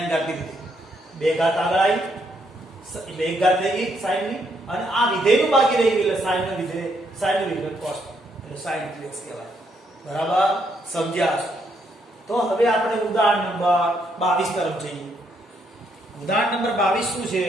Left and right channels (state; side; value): normal; both; correlation 0.74